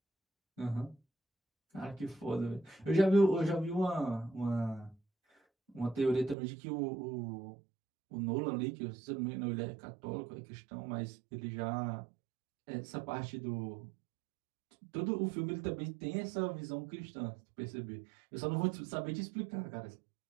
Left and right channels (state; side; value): drops out; left; at 6.4 s